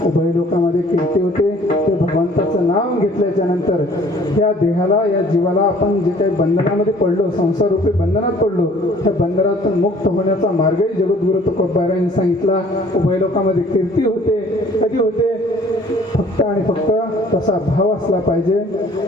उभय लोकांमध्ये कीर्ती होते ते भगवंताचं नाव घेतल्याच्या नंतर या देहाला या जीवाला आपण जे काही बंधनामध्ये पडलो संसार रूपी बंधनात पडलो त्या बंधनातून मुक्त होण्याचा मार्गही जगद्गुरु तुकोबा यांनी सांगितला. उभय लोकांमध्ये कीर्ती होते. कधी होते? फक्त आणि फक्त तसा भाव असला पाहिजे.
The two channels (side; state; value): both; normal; correlation 0.54